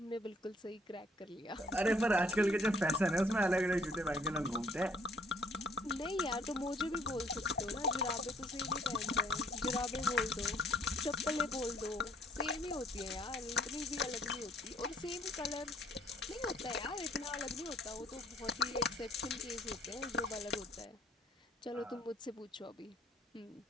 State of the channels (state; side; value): normal; both; correlation 0.62